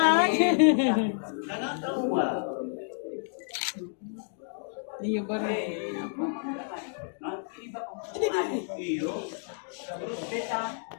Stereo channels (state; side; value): silent; right; digital silence